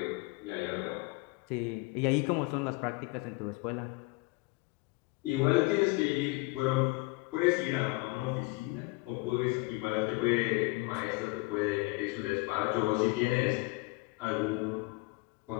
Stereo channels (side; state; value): right; quieter; 24.7 dB